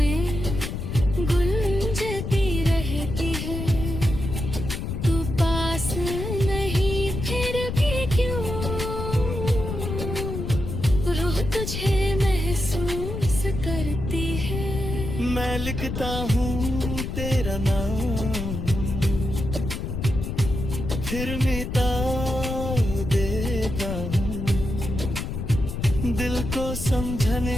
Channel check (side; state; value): left; noise; rumble, 4 dB below the sound